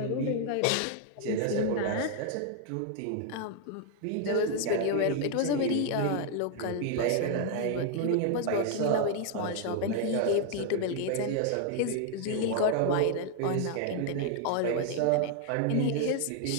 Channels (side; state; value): both; different; correlation 0.00